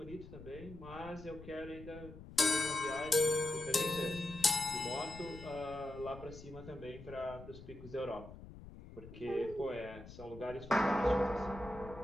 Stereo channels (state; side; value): noise; left; rumble, 15 dB below the sound